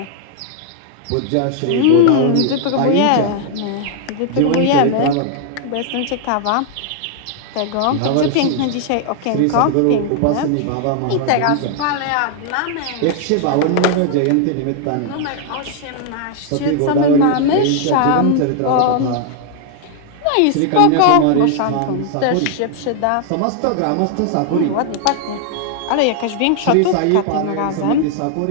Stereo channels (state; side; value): different; both; correlation 0.00